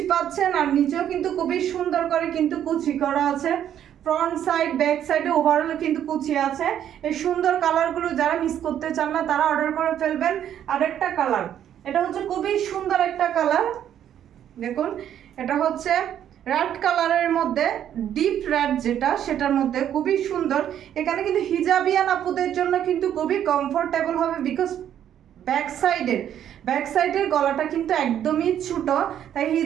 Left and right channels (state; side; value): quieter; left; 10.2 dB